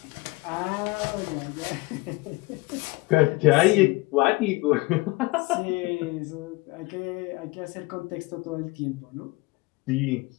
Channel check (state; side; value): quieter; right; 23.4 dB